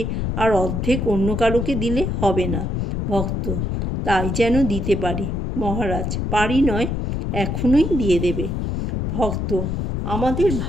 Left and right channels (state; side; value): noise; left; rumble, 1 dB below the sound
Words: আর অর্ধেক অন্য কারোকে দিলে হবে না। ভক্ত: তাই যেন দিতে পারি। মহারাজ: পারি নয়, এখনই দিয়ে দেবে। ভক্ত: আমাদের